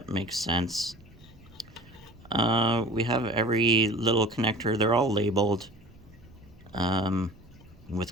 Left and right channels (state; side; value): noise; right; rumble, 24 dB below the sound